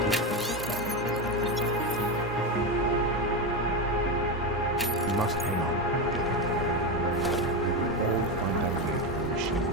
We must hang on. We will all find our way to the machine.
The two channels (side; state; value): both; normal; correlation 0.14